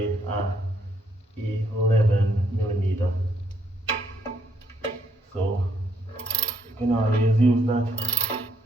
a 11 millimeter. So you can always use that.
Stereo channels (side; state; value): both; normal; correlation 0.72